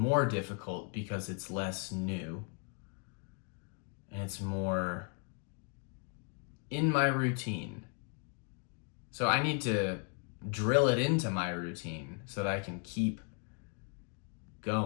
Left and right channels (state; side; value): quieter; right; 38.7 dB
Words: difficult because it's less new and it's more in my routine. So I need to drill it into my routine so that I can keep